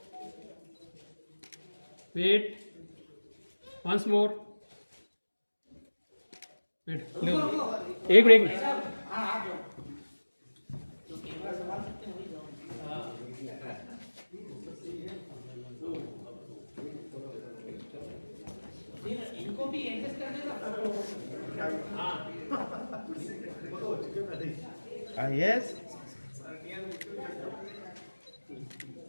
वेट वंस मोर, वेट एक ब्रेक। इनको भी एडजस्ट कर देगा। यस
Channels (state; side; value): inverted; both; correlation -1.00